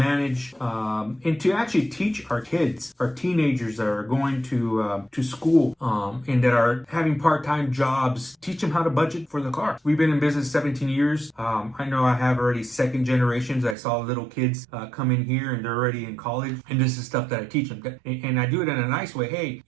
and to actually teach our kids, our teenagers that are going to school and that are having part-time jobs, teach them how to budget for the car. We've been in business 17 years. I know I have already second generations. I saw little kids come in here and they're already in college, and this is stuff that I teach them. And I do it in a nice way. Hey,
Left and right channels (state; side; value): drops out; left; at 13.8 s